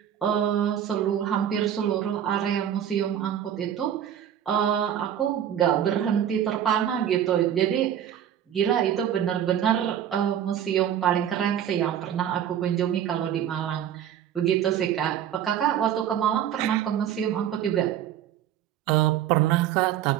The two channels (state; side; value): quieter; left; 10.0 dB